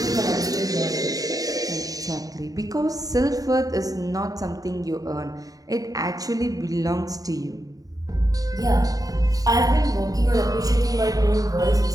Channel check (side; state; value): left; late; 0.18 ms